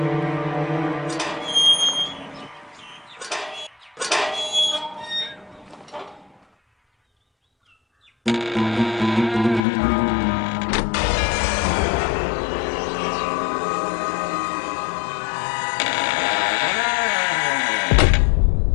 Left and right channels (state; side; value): drops out; right; at 9.6 s